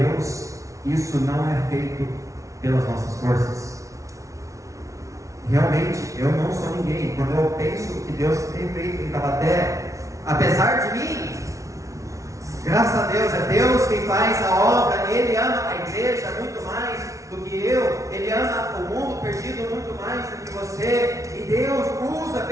isso não é feito pelas nossas forças. Realmente, eu não sou ninguém. Quando eu penso que Deus tem feito em Taubaté, apesar de mim, graças a Deus, é Deus quem faz a obra. Ele ama a igreja muito mais do que eu. Ele ama o mundo perdido muito mais do que você. E Deus usa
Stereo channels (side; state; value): left; late; 0.15 ms